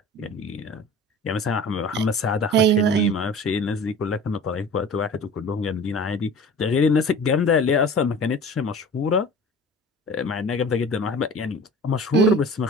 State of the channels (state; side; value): normal; both; correlation 0.40